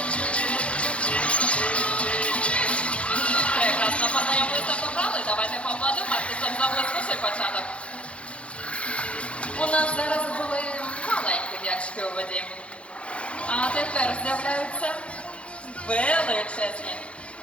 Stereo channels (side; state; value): right; late; 0.061 ms